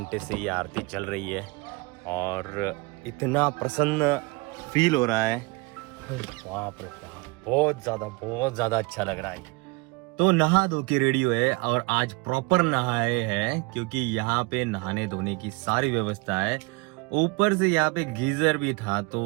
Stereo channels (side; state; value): left; quieter; 26.1 dB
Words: से ये आरती चल रही है और इतना प्रसन्न फील हो रहा है, बाप रे बाप, बहुत ज़्यादा अच्छा लग रहा है। तो नहा धो के रेडी हुए और आज प्रॉपर नहाए हैं क्योंकि यहाँ पे नहाने धोने की सारी व्यवस्था है। ऊपर से यहाँ पे गीजर भी था तो